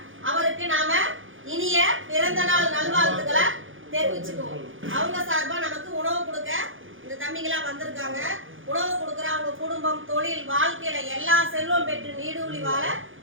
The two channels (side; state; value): left; late; 0.58 ms